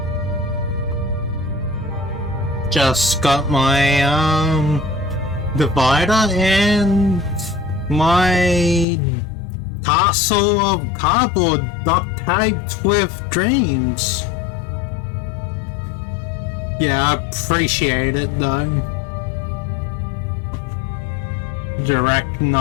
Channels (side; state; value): right; drops out; at 8.8 s